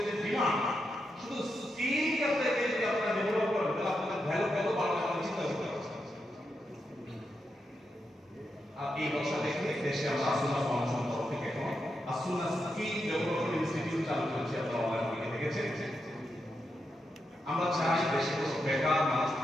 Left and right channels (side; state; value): both; normal; correlation 0.85